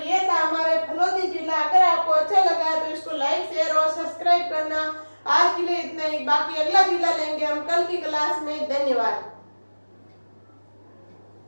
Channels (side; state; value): both; inverted; correlation -1.00